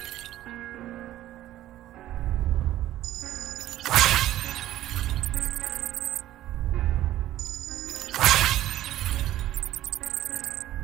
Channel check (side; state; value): left; quieter; 13.8 dB